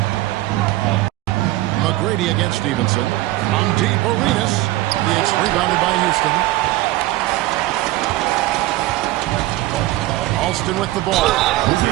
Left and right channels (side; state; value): left; quieter; 17.4 dB